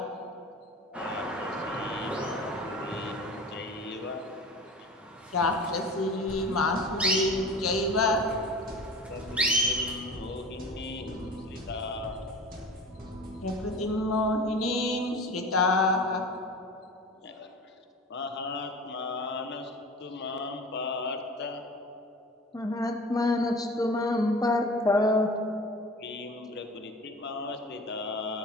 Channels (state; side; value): normal; both; correlation 0.37